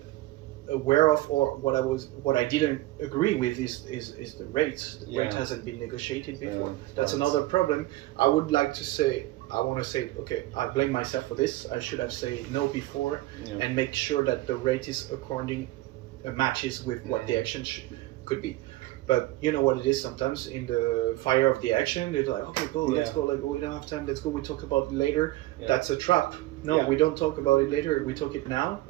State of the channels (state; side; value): quieter; left; 17.8 dB